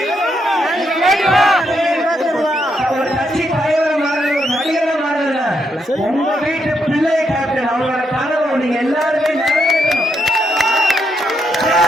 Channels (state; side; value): normal; both; correlation 0.79